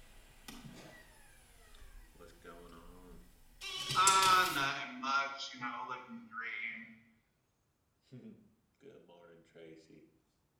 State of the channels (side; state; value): both; identical; correlation 1.00